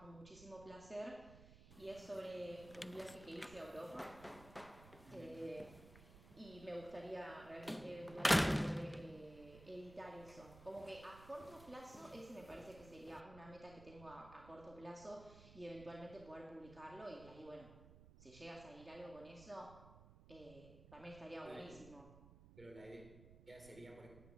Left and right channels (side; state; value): right; noise; rumble, 17 dB below the sound